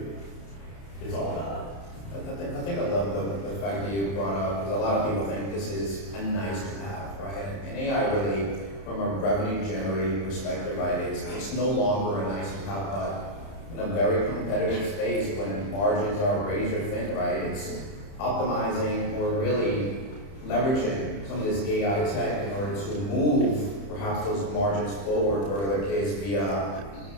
it's all about it. I think I love the fact that you brought up, because a lot of people think this is a nice to have, right? And AI really, from a revenue generating perspective, right, it's no longer a nice to have, but in a very competitive space when margins are razor thin, right? It's optimizing or really leveraging some of this AI tech in order to move perhaps those margins forward, or the case via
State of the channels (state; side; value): late; right; 30 ms